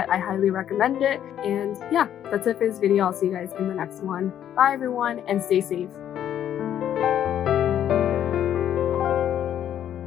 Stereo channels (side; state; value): right; quieter; 10.4 dB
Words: I highly recommend it. And yeah, that's it for this video. I'll see you guys in the next one. Bye everyone and stay safe.